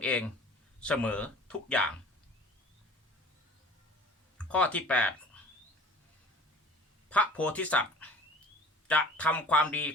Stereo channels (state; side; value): normal; both; correlation 0.45